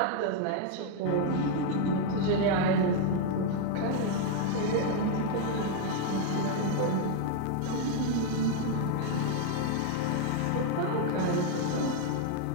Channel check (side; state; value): both; different; correlation 0.00